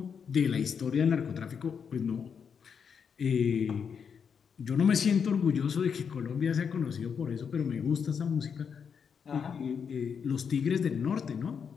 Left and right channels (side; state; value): right; quieter; 6.7 dB